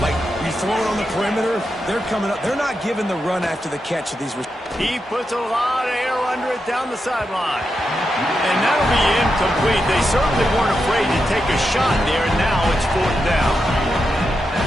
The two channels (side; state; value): both; normal; correlation 0.87